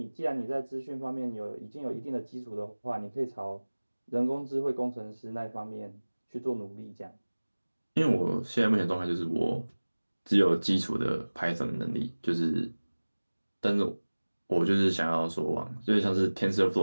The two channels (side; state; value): both; inverted; correlation -1.00